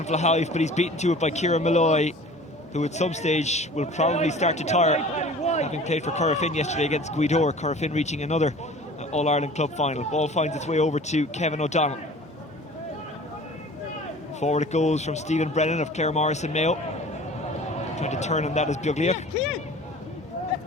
Flahive, but he's beaten to it by Kieran Malloy, who at some stage will probably start to tire, having played for Corofin yesterday against Guidor. Corofin reaching another All-Ireland club final. Ball finds its way over to Kevin O'Donnell. Forward it goes from Stephen Brennan of Clare Morrison Mayo. Trying to turn on that is Buglia.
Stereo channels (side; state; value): both; normal; correlation 0.44